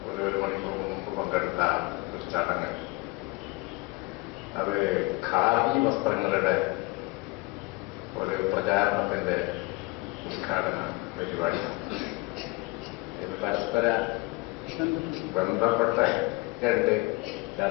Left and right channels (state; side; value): quieter; right; 24.8 dB